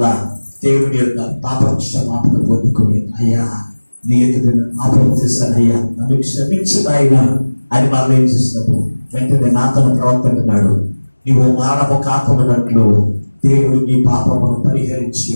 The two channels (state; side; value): inverted; both; correlation -1.00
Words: దేవుని యొక్క పాప క్షమాపణ పొందుకొని, అయ్యా నీ ఎదుట పాపం చేశాను అయ్యా, నన్ను క్షమించు నాయనా అని మరలా ఏం చేస్తున్నాడు, వెంటనే నాతను ప్రవర్తకున్నాడు. నీవు మానవ కాపమున్నట్లు దేవుడు నీ పాపమును పరిహరించి